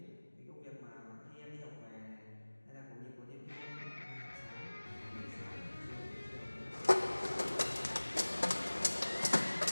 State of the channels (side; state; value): both; inverted; correlation -1.00